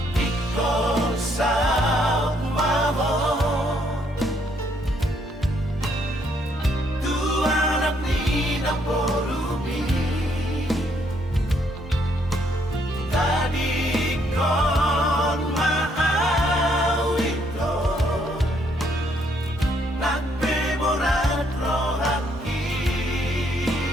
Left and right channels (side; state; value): both; normal; correlation 0.70